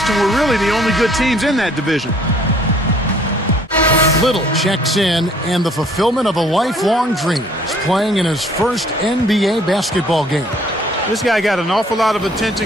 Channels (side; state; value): both; normal; correlation 0.59